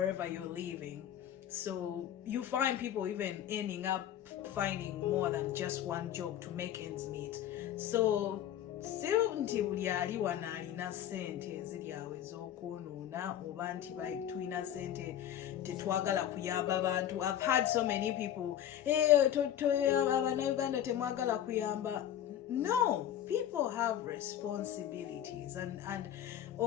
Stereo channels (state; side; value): quieter; right; 10.8 dB